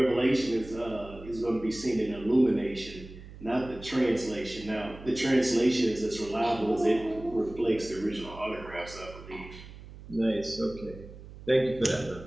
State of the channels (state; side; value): noise; right; hum, 16 dB below the sound